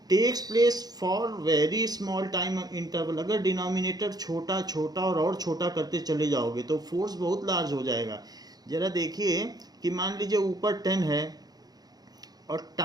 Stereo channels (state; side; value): late; left; 0.19 ms